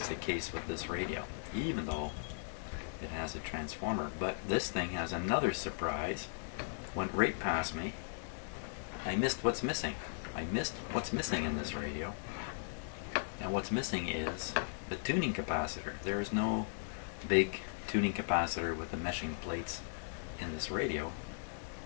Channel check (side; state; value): right; silent; digital silence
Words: the case with this radio, even though it has a transformer. But this thing has another surprise. Went right past me. I missed what's missing. I missed what's missing in this radio. And what's missing is the tuning capacitor. There is no big tuning capacitor with the meshing plates in this radio.